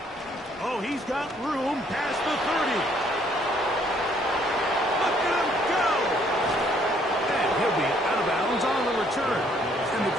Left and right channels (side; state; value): both; normal; correlation 0.65